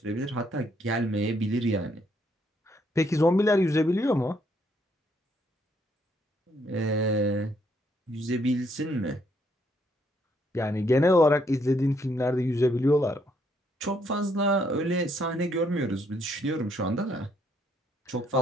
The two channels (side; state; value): both; normal; correlation 0.71